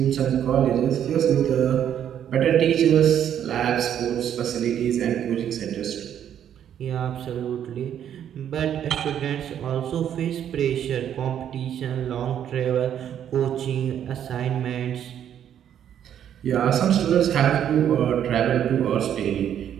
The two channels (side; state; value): left; quieter; 9.7 dB